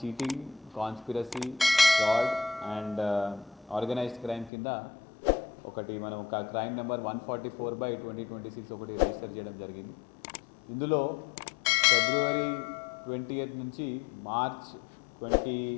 conspiracy, fraud and organised crime కింద ఒకటి మనం ఒక క్రైమ్ నెంబర్ 144/2026 ఒకటి రిజిస్టర్ చేయడం జరిగింది. ఇందులో ఫిబ్రవరి 20th నుంచి మార్చ్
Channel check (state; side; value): drops out; right; at 4.5 s